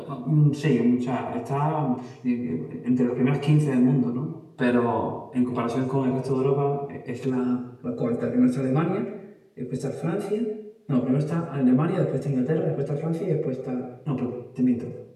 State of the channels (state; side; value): identical; both; correlation 1.00